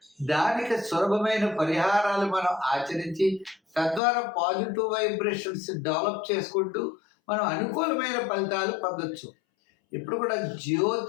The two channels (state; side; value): drops out; right; at 4.0 s